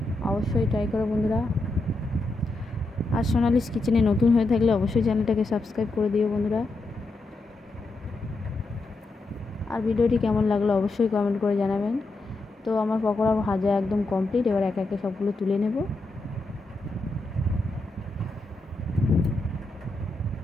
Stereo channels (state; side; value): quieter; right; 3.0 dB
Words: অবশ্যই ট্রাই করো বন্ধুরা। আর সোনালিস কিচেনে নতুন হয়ে থাকলে অবশ্যই চ্যানেলটাকে সাবস্ক্রাইব করে দিও বন্ধুরা। আর ভিডিওটি কেমন লাগলো অবশ্যই কমেন্ট করে জানাবেন। তো আমার পকোড়া ভাজা একদম কমপ্লিট। এবার একে একে সবগুলো তুলে নেব।